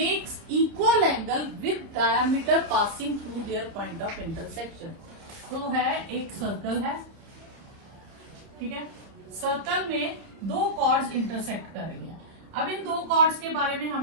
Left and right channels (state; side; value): late; left; 30 ms